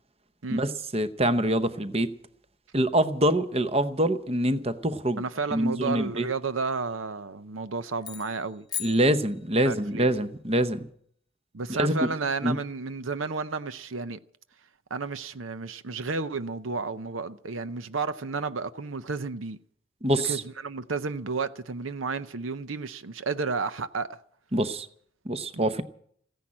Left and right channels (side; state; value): both; normal; correlation 0.34